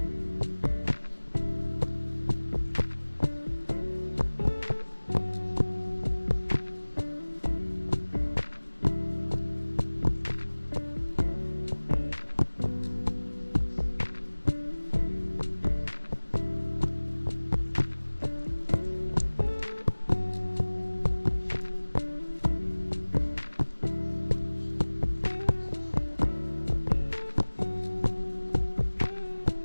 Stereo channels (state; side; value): inverted; both; correlation -1.00